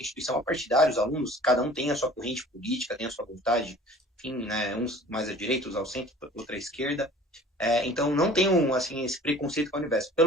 instituição partidária, os alunos, cada um tem a sua corrente política, tem a sua vontade, enfim, né? Uns mais à direita, uns ao centro, outra à esquerda. Então, não tem assim, esse preconceito com a Univesp.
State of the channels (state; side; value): normal; both; correlation 0.47